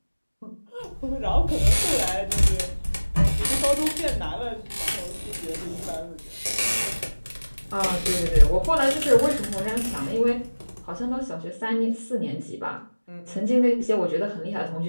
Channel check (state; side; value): inverted; both; correlation -1.00